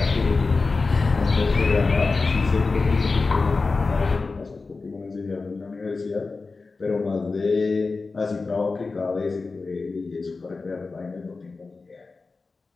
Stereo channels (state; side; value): quieter; right; 4.0 dB